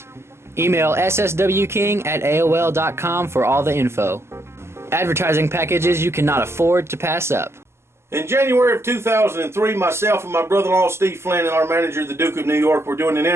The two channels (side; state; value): left; late; 0.12 ms